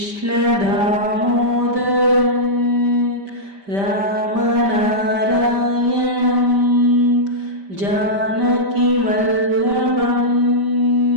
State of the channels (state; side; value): late; left; 5.1 ms